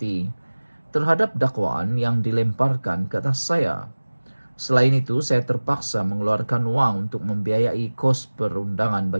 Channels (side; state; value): both; inverted; correlation -1.00